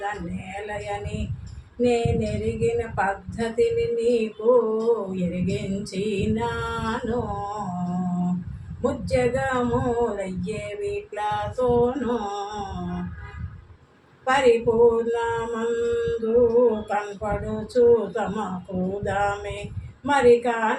నేలయని నేనెరిగిన పద్ధతిని నీకు ఎరిగించినాను. ముజ్జగములయ్యే వీట్లతోనూ పరిపూర్ణమందు కనపడుచు తమకు దామే మరి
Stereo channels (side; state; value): both; identical; correlation 1.00